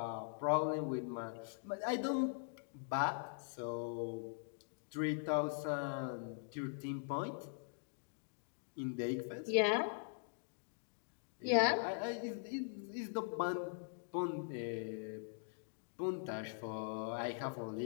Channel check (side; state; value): right; silent; digital silence